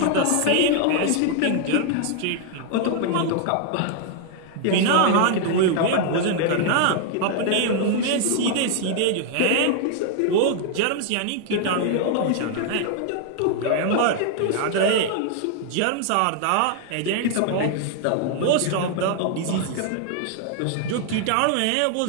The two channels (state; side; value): different; both; correlation 0.00